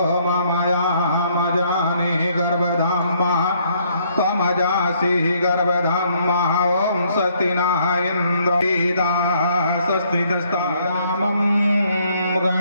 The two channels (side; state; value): both; inverted; correlation -0.67